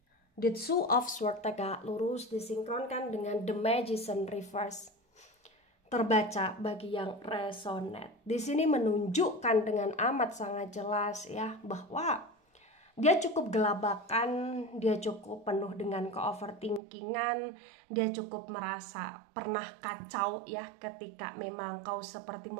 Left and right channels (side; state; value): left; drops out; at 16.8 s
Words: The Two of Swords tegak lurus disinkronkan dengan The Magician reverse terbaca bagi yang resonate. Di sini menunjukkan dengan amat sangat jelas ya bahwa dia cukup gelabakan, dia cukup penuh dengan ke-overthinkingan, dia cukup merasa pernah kacau ya ketika memang kau seperti